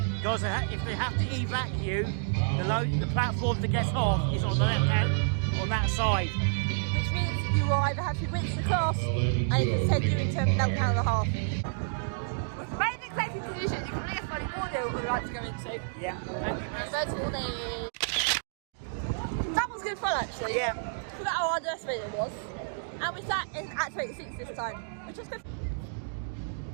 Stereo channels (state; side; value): silent; left; digital silence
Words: Because if they have to evac you, the platform to get off is on the left hand, on that side. Which means you will either have to rinse the class and it can send you into a meltdown and a half. With the main executive decision, you can leave money audio what we'd like to go into. Yeah. First warning. That was good fun actually. Yeah. Forgot how underestimated it was. And we sat in Activate 6 this time, which was good.